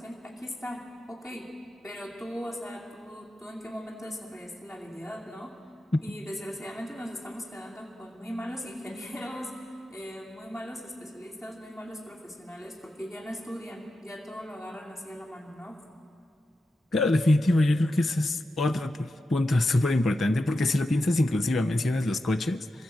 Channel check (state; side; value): normal; both; correlation 0.90